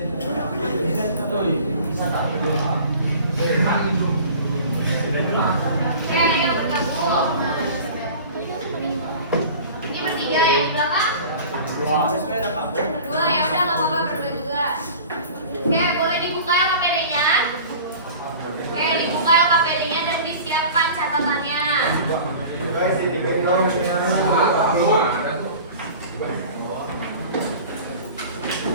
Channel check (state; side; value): inverted; both; correlation -0.41